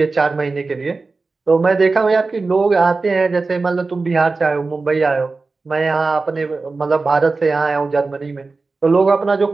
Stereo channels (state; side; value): quieter; left; 3.9 dB